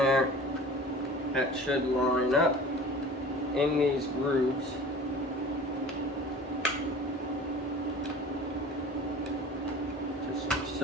That should line up in these grooves. Just like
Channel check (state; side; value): normal; both; correlation 0.41